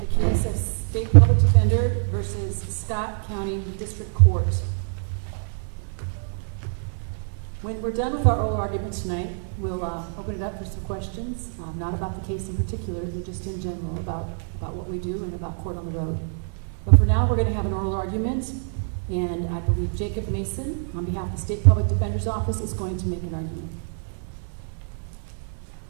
case of State Public Defender versus Scott County District Court. When we're done with our oral argument tonight, we'll open it up for some questions, not about the case in particular, but just in general about what we do and about court on the road. But for now, we're going to have an oral argument, and I believe Jacob Mason, on behalf of the State Public Defender's Office, is going to make an argument.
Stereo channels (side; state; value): left; silent; digital silence